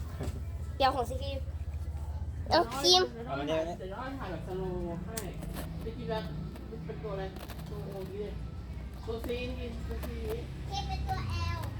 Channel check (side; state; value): both; identical; correlation 1.00